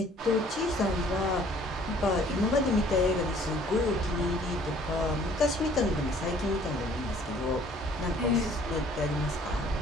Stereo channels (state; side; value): normal; both; correlation 0.56